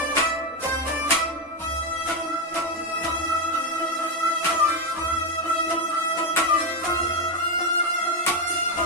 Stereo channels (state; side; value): normal; both; correlation 0.09